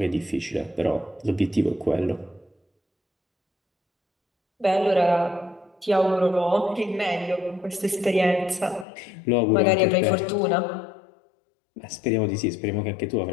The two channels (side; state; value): right; drops out; at 8.8 s